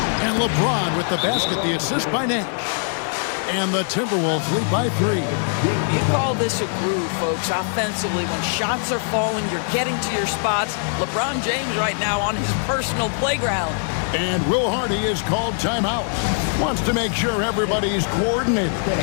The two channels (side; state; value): right; silent; 61 dB below the other